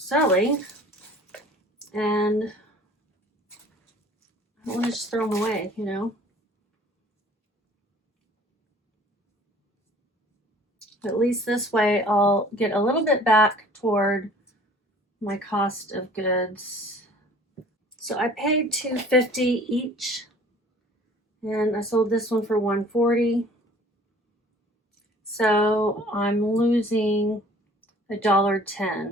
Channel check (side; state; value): both; normal; correlation 0.51